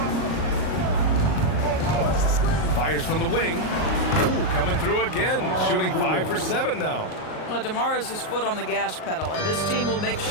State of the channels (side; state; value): right; late; 38 ms